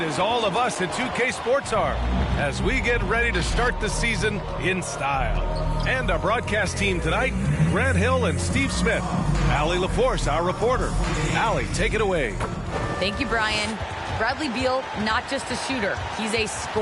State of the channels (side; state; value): both; identical; correlation 1.00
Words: as all of us at 2K Sports are as we get ready to start the season in style. And our broadcast team tonight, Grant Hill and Steve Smith. Allie LaForce, our reporter. Allie, take it away. Thank you, Brian. Bradley Beal, not just a shooter, he's a